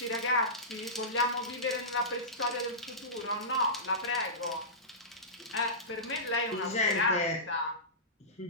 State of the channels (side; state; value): both; normal; correlation -0.19